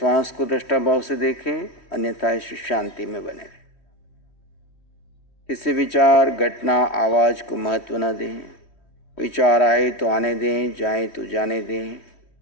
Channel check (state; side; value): late; right; 3.1 ms